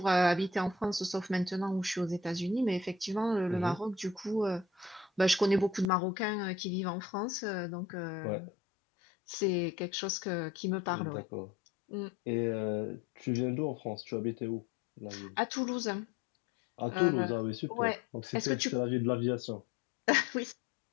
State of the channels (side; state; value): right; drops out; at 5.9 s